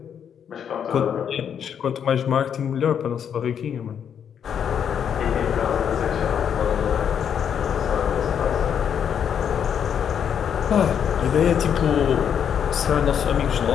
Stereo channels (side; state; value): right; quieter; 8.2 dB